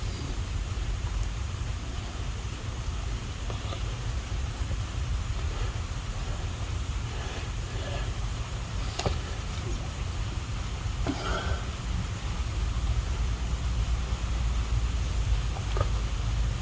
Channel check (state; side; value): identical; both; correlation 1.00